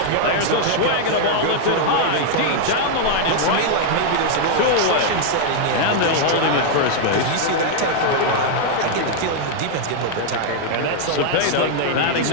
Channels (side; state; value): both; different; correlation 0.00